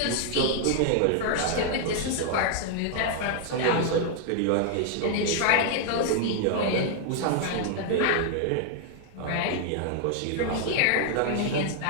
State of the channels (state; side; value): different; both; correlation 0.00